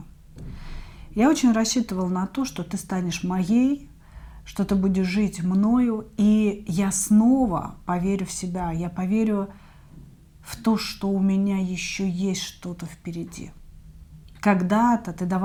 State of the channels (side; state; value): both; identical; correlation 1.00